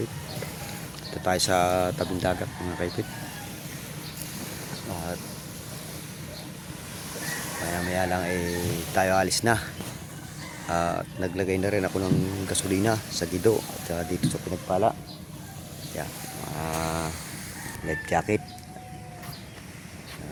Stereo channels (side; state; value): both; identical; correlation 1.00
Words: Ito tayo sa tabing dagat mga kaipit. At maya lang tayo alis na. At naglagay na rin ako ng gasolina sa Gido at dito sa Pinagpala. Yan, life jacket